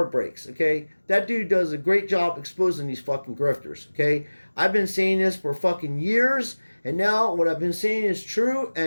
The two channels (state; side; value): inverted; both; correlation -1.00